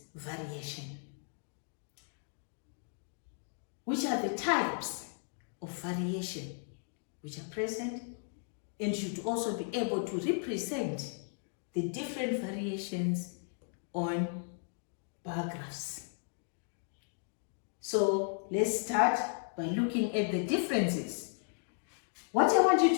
variation? Which are the types of variation which are present, and should also be able to represent the different variations on bar graphs. So let's start by looking at the differences. What I want you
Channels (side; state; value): right; silent; 54 dB below the other